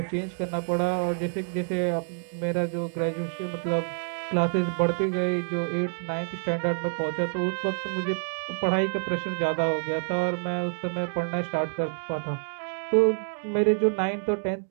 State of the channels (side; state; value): left; silent; digital silence